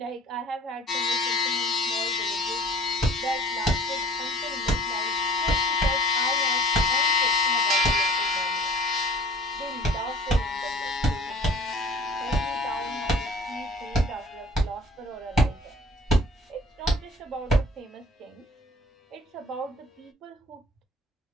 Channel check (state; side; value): normal; both; correlation 0.48